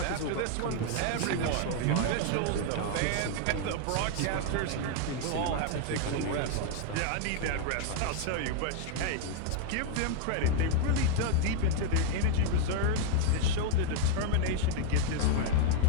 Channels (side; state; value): both; different; correlation 0.00